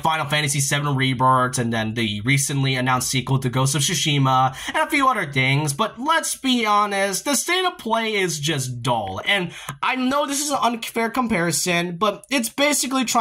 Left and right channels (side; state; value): both; identical; correlation 1.00